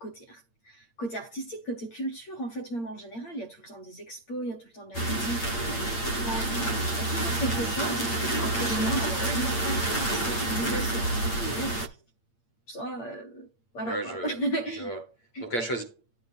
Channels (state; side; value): late; right; 8.7 ms